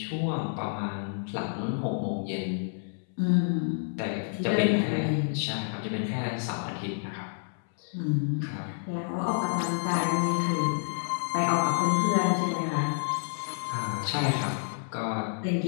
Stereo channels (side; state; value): right; silent; 59 dB below the other